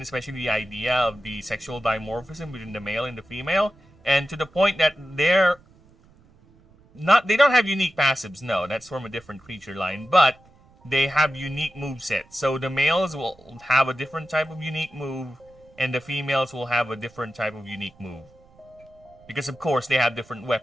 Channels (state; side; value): noise; right; rumble, 29 dB below the sound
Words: especially the idea of the sexual dimorphism between the male and the female, and to the point that they don't have unique passives. No, that's from a different creature line, but they have unique movesets. So the males will have a different type of unique move, and the females will have a different type of unique move. Because of course they have different